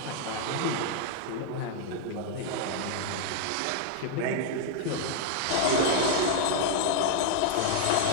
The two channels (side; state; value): both; different; correlation 0.00